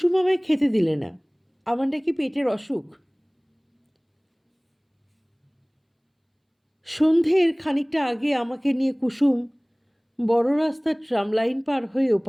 আমায় খেতে দিলে না, আমার নাকি পেটের অসুখ। সন্ধ্যের খানিকটা আগে আমাকে নিয়ে কুসুম বড় রাস্তার ট্রাম লাইন পার হয়ে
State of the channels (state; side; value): identical; both; correlation 1.00